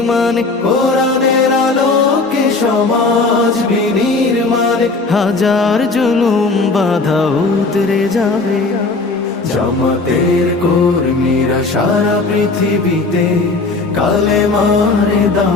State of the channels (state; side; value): quieter; right; 3.6 dB